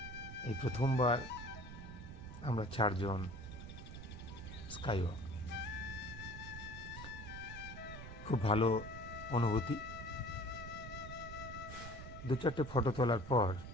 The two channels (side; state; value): right; noise; rumble, 11 dB below the sound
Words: এই প্রথমবার আমরা 4 জন স্কাই ওয়াক। খুব ভালো অনুভূতি। 2-4টে ফটো তোলার পর